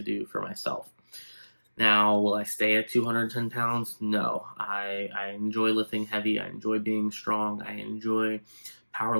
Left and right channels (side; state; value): both; inverted; correlation -1.00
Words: do for myself. Now, will I stay at 210 pounds? No. I enjoy lifting heavy. I enjoy being strong. I enjoy